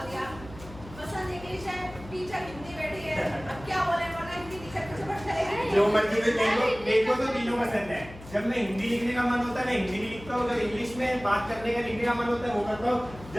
दिया। पसंद इंग्लिश है, टीचर हिंदी बैठी है। अब क्या बोले, वरना हिंदी टीचर कुछ पढ़ जाएगी। जो मर्जी में मेरे को तो तीनों पसंद है। जब मैं हिंदी लिखने का मन होता है मैं हिंदी लिखता हूँ, जब इंग्लिश में बात करने का लिखने का मन होता है वो करता हूँ,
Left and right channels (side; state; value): left; noise; hum, 16 dB below the sound